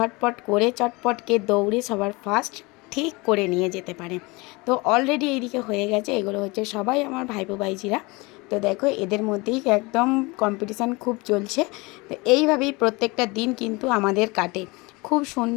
করে চটপটকে দৌড়ে সবার ফার্স্ট ঠিক করে নিয়ে যেতে পারে। তো অলরেডি এইদিকে হয়ে গেছে। এগুলো হচ্ছে সবাই আমার ভাইপো ভাইজিরা। তো দেখো এদের মধ্যেই একদম কম্পিটিশান খুব চলছে। তো এইভাবেই প্রত্যেকটা দিন কিন্তু আমাদের কাটে, খুব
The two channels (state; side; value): quieter; right; 25.2 dB